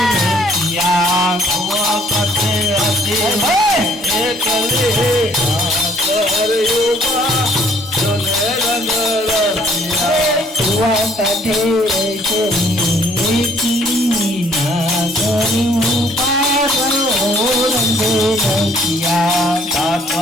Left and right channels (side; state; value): both; normal; correlation 0.61